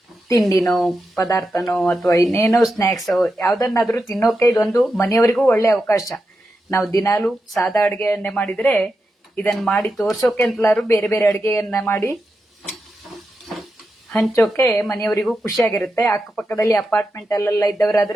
ತಿಂಡಿನೋ ಪದಾರ್ಥನೋ ಅಥವಾ ಇನ್ನೇನೋ ಸ್ನ್ಯಾಕ್ಸೋ ಯಾವುದನ್ನಾದರೂ ತಿನ್ನೋಕೆ ಇದೊಂದು ಮನೆಯವರಿಗೂ ಒಳ್ಳೆ ಅವಕಾಶ. ನಾವು ದಿನಾಲೂ ಸಾದಾ ಅಡುಗೆಯನ್ನೇ ಮಾಡಿದರೆ ಇದನ್ನು ಮಾಡಿ ತೋರ್ಸೋಕೆ ಅಂತಲಾದ್ರು ಬೇರೆ ಬೇರೆ ಅಡುಗೆಯನ್ನ ಮಾಡಿ ಹಂಚೋಕೆ ಮನೆಯವರಿಗೂ ಖುಷಿಯಾಗಿರುತ್ತೆ. ಅಕ್ಕಪಕ್ಕದಲ್ಲಿ ಅಪಾರ್ಟ್ಮೆಂಟ್ ಅಲ್ಲೆಲ್ಲ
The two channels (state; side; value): normal; both; correlation 0.88